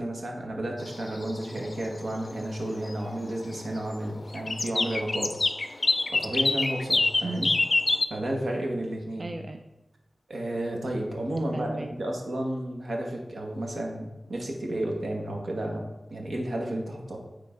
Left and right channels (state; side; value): normal; both; correlation 0.95